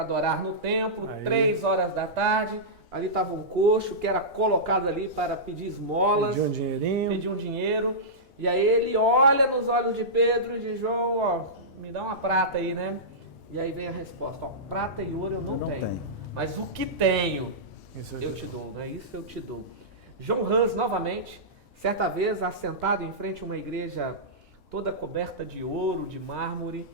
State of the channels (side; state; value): both; normal; correlation -0.16